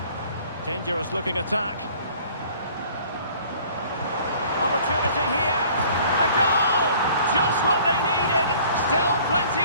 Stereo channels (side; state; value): both; inverted; correlation -0.53